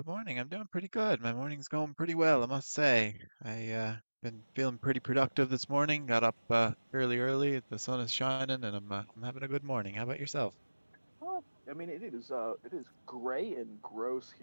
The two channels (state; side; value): inverted; both; correlation -1.00